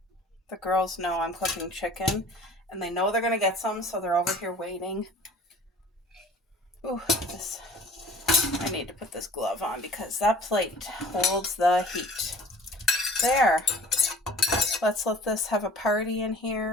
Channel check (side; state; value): both; normal; correlation 0.47